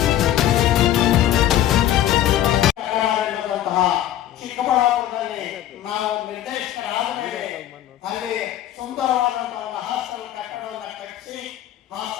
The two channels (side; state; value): right; quieter; 12.2 dB